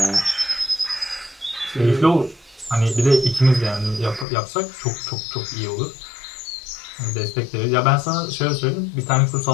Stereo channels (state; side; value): drops out; right; at 4.2 s